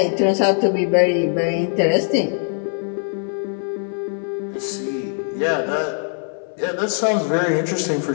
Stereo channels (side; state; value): right; silent; 55 dB below the other